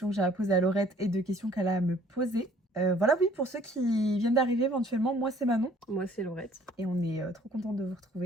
que j'ai à poser à Laurette et de questions qu'elle a à me poser. Voilà, oui, pour ceux qui viennent d'arriver éventuellement, moi c'est Manon. Moi c'est Laurette. Et on est trop contente de vous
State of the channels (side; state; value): both; normal; correlation 0.57